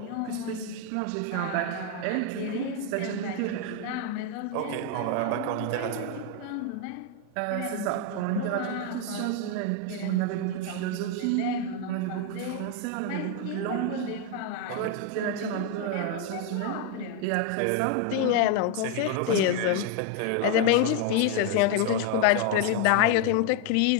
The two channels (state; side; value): different; both; correlation 0.01